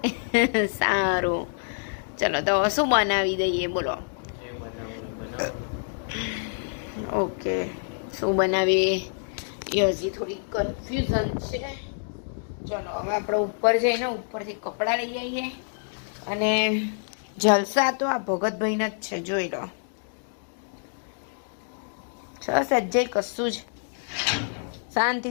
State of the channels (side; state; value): right; silent; digital silence